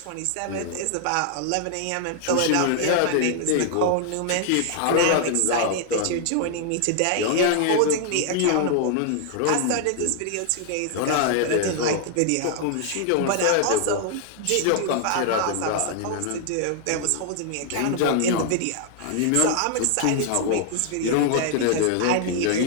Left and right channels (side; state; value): both; different; correlation 0.00